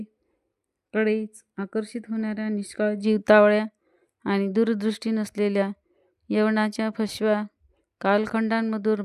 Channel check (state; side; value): identical; both; correlation 1.00